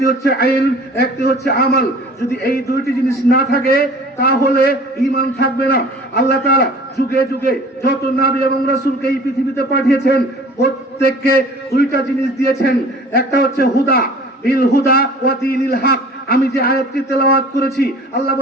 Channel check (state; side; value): normal; both; correlation 0.46